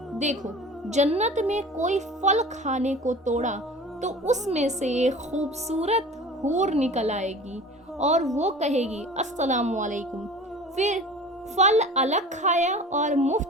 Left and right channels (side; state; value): both; normal; correlation 0.40